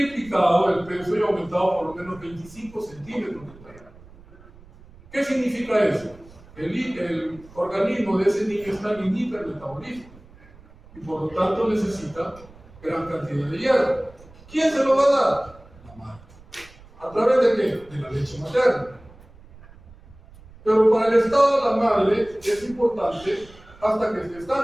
el peso y aumentado por lo menos 25 centímetros de talla. ¿Qué significa eso? El organismo de ese niño está en hipermetabolismo y por lo tanto necesita gran cantidad de hierro. ¿Quién se lo va a dar? La madre. ¿A través de qué? De la leche materna. Pero para el estado de la madre es importante hasta que esté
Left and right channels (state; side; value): noise; right; rumble, 23 dB below the sound